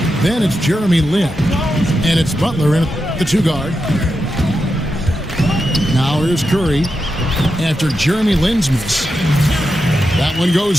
Then it's Jeremy Lin, and it's Butler in the two guard. Now here's Curry after Jeremy Lin's miss. That one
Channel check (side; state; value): both; normal; correlation 0.88